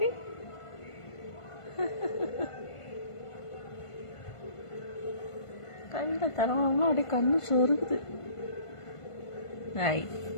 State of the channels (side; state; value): right; late; 1.5 ms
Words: கையில தரவாமலாம் அப்படியே கண்ணு சொருகுது. ஐய்